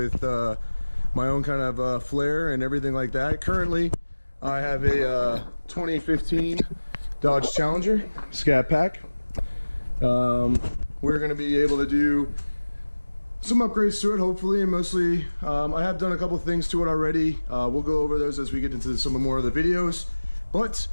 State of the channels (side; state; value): both; inverted; correlation -1.00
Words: my own kind of flair and everything like that. Currently, I have a 2015 Dodge Challenger Scat Pack. We're going to be able to do some upgrades to it, hopefully, and mostly I have done a couple things to it already. We'll go over those as we get into some more of the videos, but